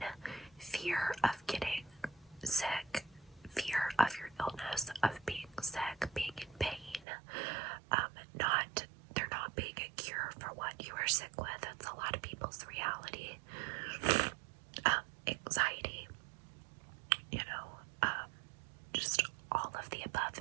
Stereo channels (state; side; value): drops out; left; at 7.1 s